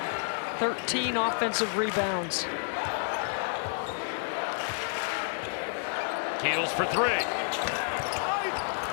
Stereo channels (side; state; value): right; silent; 58 dB below the other